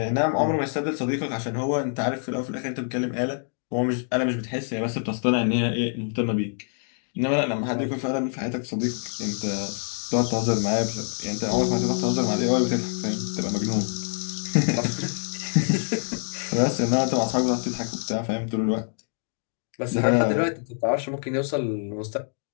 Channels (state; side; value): silent; right; digital silence